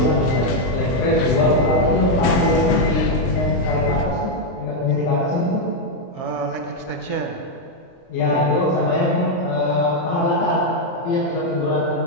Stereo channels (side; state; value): right; late; 23 ms